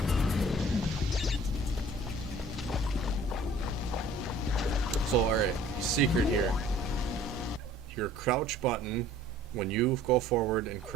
all right, secret here. Your crouch button, when you go forward and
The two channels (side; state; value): both; normal; correlation 0.51